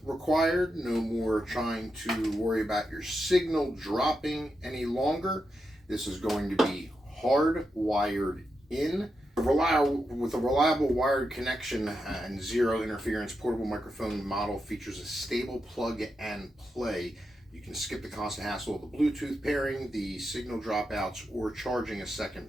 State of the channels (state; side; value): normal; both; correlation 0.86